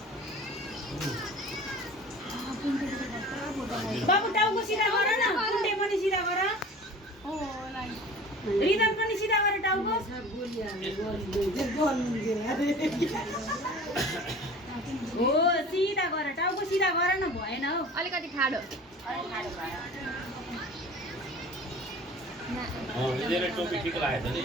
बाबु टाउको सिधा गर न कुण्डे पनि सिधा गर रिदम पनि सिधा गर टाउको हो सिधा गर टाउको सिधा गर न भएन हौ अलिकति खाडो यिनीहरूले टोपी ठिक लागेछ नि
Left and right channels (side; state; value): both; normal; correlation 0.42